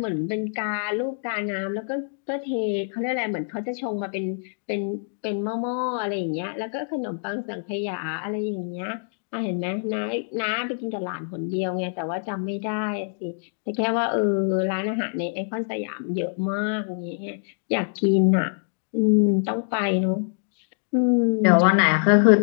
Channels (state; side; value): silent; right; digital silence